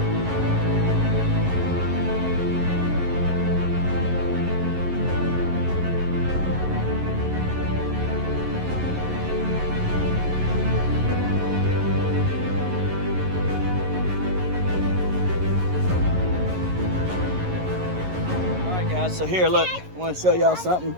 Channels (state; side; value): late; left; 11 ms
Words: So here, look, I want to show y'all something.